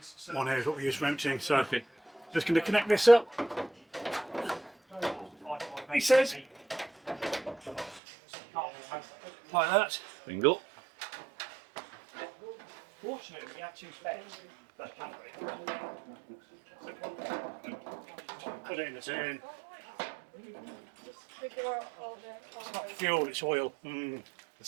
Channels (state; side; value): drops out; left; at 8.0 s